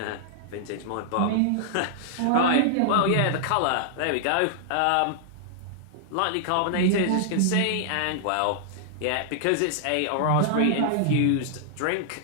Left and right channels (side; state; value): both; different; correlation -0.01